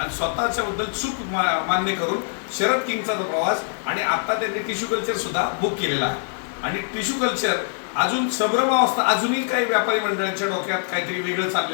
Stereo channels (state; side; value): silent; right; 63 dB below the other